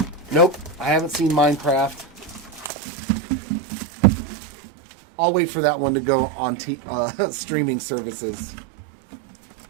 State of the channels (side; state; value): left; drops out; at 2.7 s